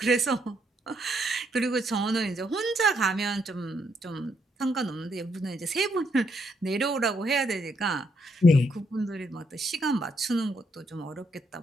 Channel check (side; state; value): both; normal; correlation 0.75